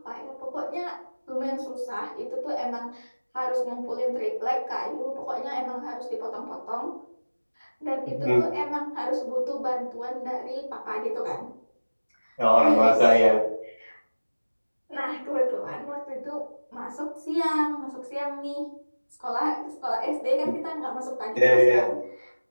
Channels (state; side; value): inverted; both; correlation -1.00